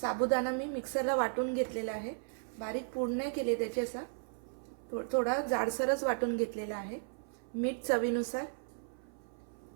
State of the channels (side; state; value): left; silent; 54 dB below the other